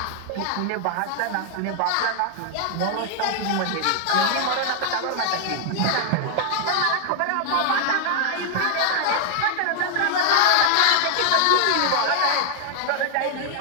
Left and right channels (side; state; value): both; different; correlation 0.00